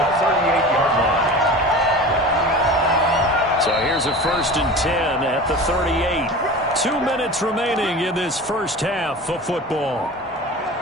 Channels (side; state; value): both; normal; correlation 0.34